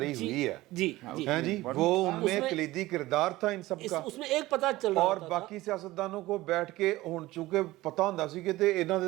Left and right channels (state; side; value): quieter; left; 18.0 dB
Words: ہوئی ہے جی ہیں جی, وہ ان میں کلیدی کردار تھا ان سب کا, اس میں ایک پتہ چل رہا اور ہوتا تھا. باقی سیاستدانوں کو بیٹھ کے ہن چونکہ پتہ ہوندا سی کہ تے انہاں